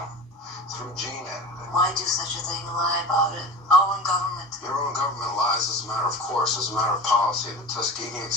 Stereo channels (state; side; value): normal; both; correlation 0.33